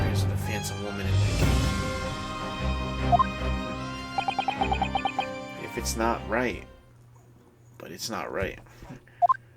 of the phantom woman in the game. If it's not right, but it's not right.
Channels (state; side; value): identical; both; correlation 1.00